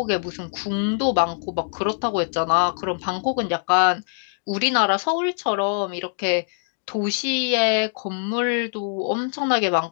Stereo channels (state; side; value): silent; right; digital silence